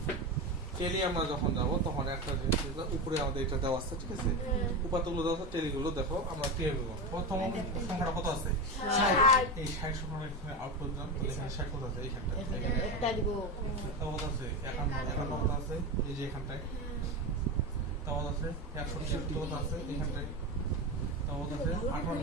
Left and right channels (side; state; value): both; normal; correlation 0.18